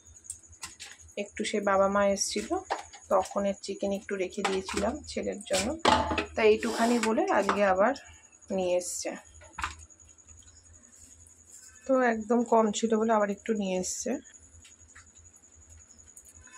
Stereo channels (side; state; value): both; identical; correlation 1.00